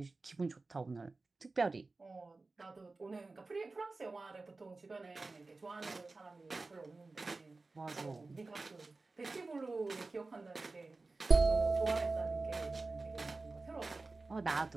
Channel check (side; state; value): left; quieter; 3.5 dB